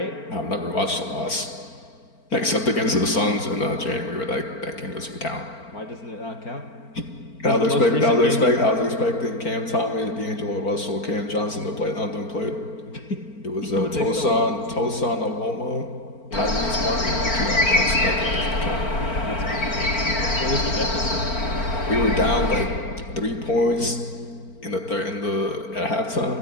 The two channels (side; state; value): right; late; 4.4 ms